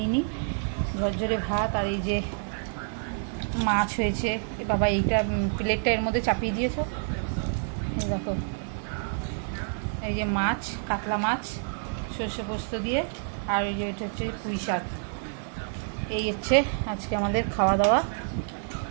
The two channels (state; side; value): silent; left; digital silence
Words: নিই। ঝরঝরে ভাত আর এই যে মাছ হয়েছে। বাবা এইটা প্লেটটা এর মধ্যে চাপিয়ে দিয়েছো, এই দেখো। এই যে মাছ, কাতলা মাছ সর্ষে পোস্ত দিয়ে, আর এই যে এটা হচ্ছে পুঁই শাক। এই হচ্ছে আজকে আমাদের খাওয়া দাওয়া